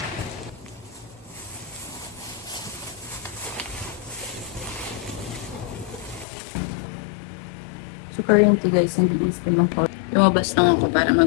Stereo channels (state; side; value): drops out; right; at 6.2 s